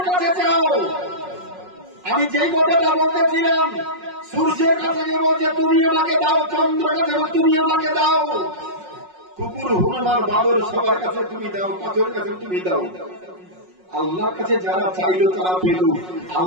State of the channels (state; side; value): late; left; 5.5 ms